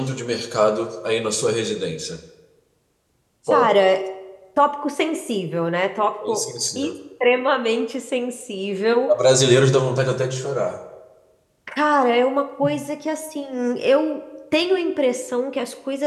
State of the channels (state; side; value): identical; both; correlation 1.00